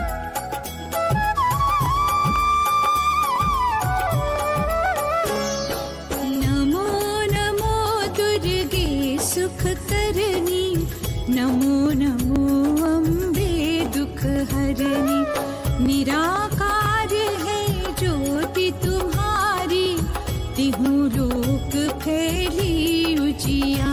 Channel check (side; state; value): both; identical; correlation 1.00